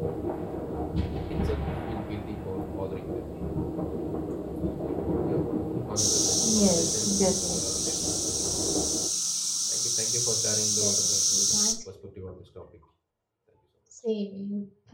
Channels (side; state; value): both; identical; correlation 1.00